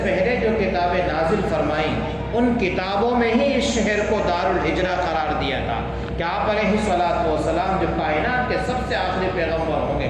پہلے جو کتابیں نازل فرمائیں ان کتابوں میں ہی اس شہر کو دار الہجرہ قرار دیا تھا کہ آپ علیہ الصلوۃ والسلام جو کائنات کے سب سے آخری پیغمبر ہوں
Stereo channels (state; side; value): identical; both; correlation 1.00